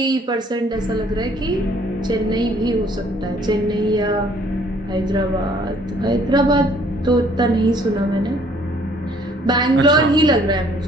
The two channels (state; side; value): normal; both; correlation 0.60